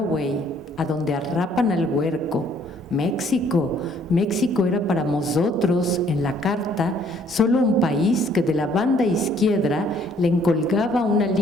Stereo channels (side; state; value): both; normal; correlation 0.62